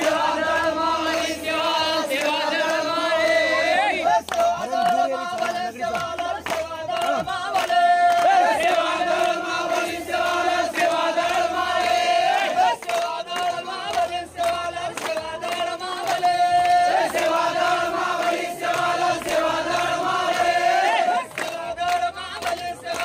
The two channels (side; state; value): both; identical; correlation 1.00